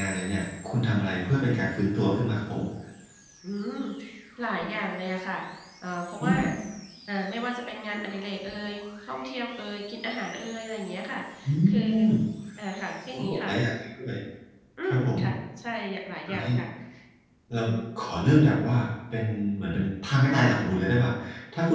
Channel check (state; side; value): identical; both; correlation 1.00